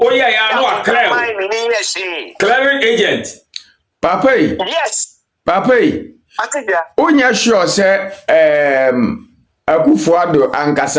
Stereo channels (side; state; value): both; identical; correlation 1.00